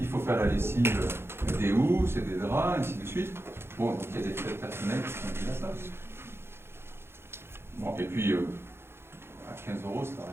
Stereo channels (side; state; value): left; late; 0.12 ms